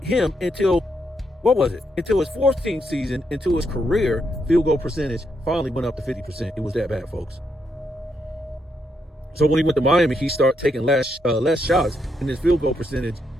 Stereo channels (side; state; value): both; normal; correlation 0.79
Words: him until, until his 14th season, until his career field goal percentage finally went up to 50%. It was that bad, folks. So when he went to Miami, he started taking less shots, and his field goal percentage